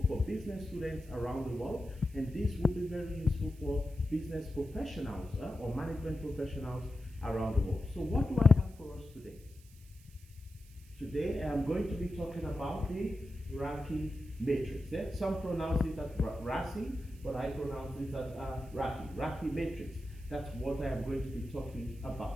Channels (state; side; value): noise; right; hiss, 26 dB below the sound